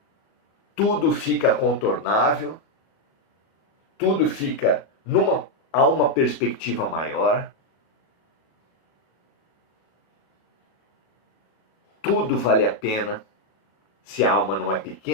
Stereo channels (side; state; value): right; late; 38 ms